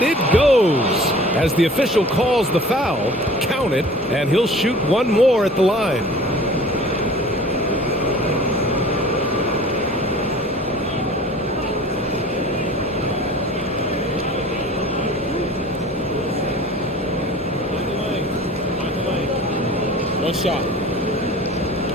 it goes. As the official calls the foul, count it, and he'll shoot one more at the line. One shot.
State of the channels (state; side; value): normal; both; correlation 0.45